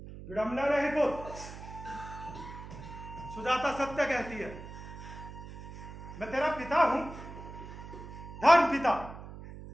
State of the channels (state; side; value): noise; right; hum, 13 dB below the sound